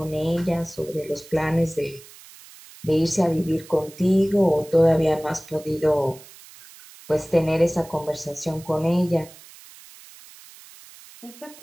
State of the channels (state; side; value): noise; right; hiss, 21 dB below the sound